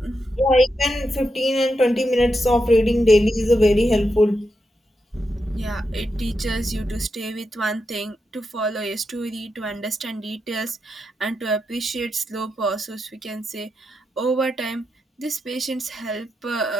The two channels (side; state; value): both; normal; correlation 0.86